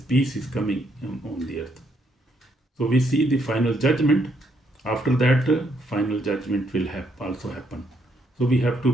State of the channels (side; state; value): both; normal; correlation 0.74